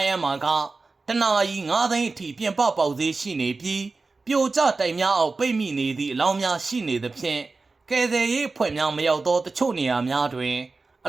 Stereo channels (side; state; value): left; quieter; 3.8 dB